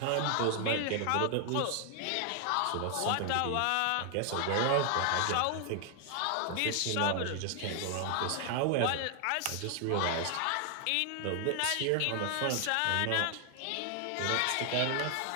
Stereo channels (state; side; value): different; both; correlation 0.00